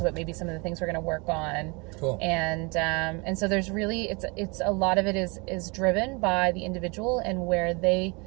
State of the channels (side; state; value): left; quieter; 29.4 dB